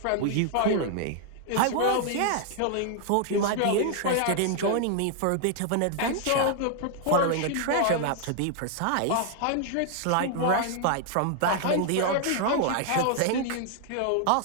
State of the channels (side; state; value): both; different; correlation 0.00